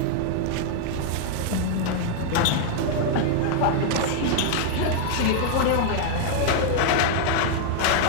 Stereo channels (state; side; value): different; both; correlation -0.01